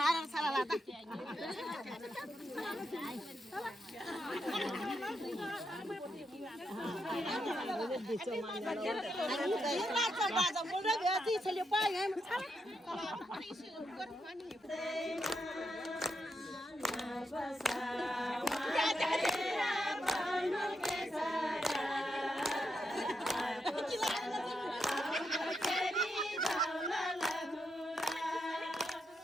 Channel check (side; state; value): both; normal; correlation 0.83